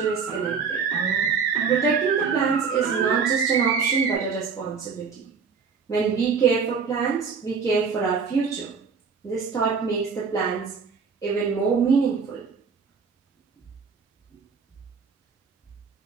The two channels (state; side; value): quieter; left; 5.7 dB